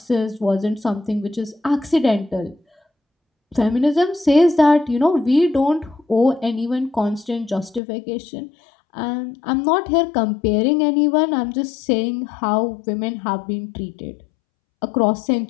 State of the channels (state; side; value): drops out; right; at 7.8 s